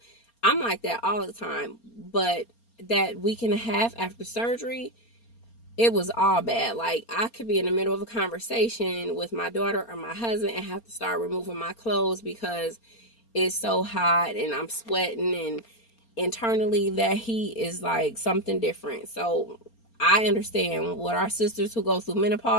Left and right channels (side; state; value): right; late; 4.3 ms